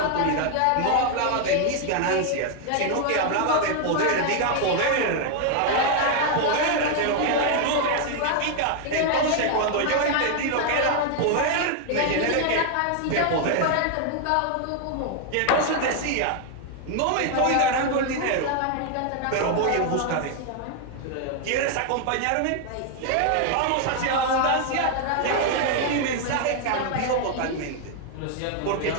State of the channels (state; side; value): different; both; correlation 0.00